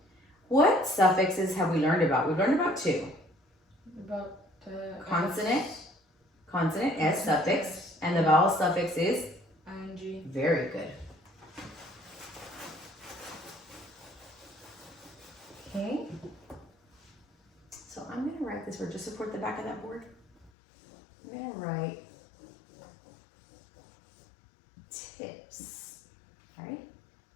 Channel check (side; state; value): right; drops out; at 20.5 s